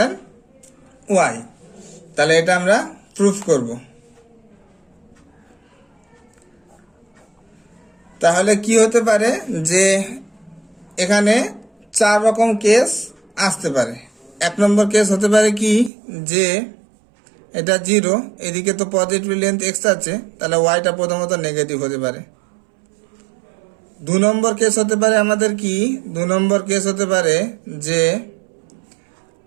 y. তাহলে এটা আমরা প্রুফ করব। তাহলে কি হতে পারে যে এখানে 4 রকম কেস আসতে পারে। 1 নম্বর কেস হতে পারে কি, যে এটা 0, এদিকে তো পজিটিভ লেন্থ এক্স আছে, তাহলে ওয়াইটা প্রথমত নেগেটিভ হতে পারে। 2 নম্বর কেস হতে পারে আমাদের কি, 2 নম্বর কেস হতে পারে যে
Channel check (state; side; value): drops out; left; at 15.9 s